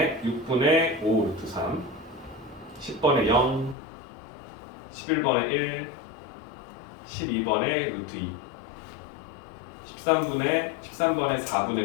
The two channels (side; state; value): right; drops out; at 3.8 s